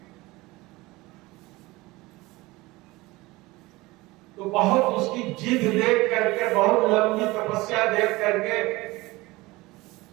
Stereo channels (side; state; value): left; quieter; 21.0 dB